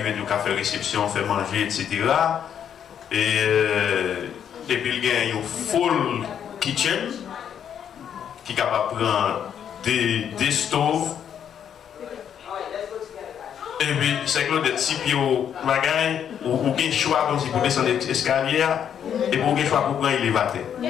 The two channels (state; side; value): quieter; right; 8.7 dB